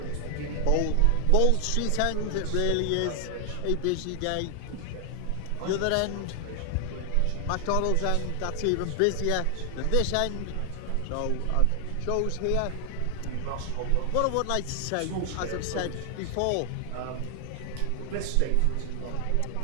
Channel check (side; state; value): both; different; correlation 0.00